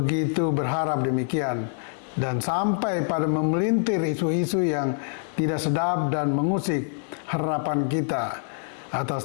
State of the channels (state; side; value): silent; right; digital silence